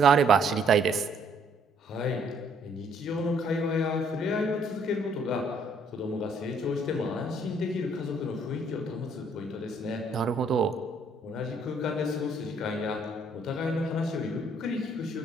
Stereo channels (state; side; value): normal; both; correlation 0.65